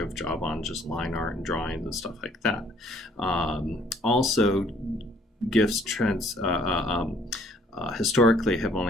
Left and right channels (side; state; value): both; normal; correlation 0.61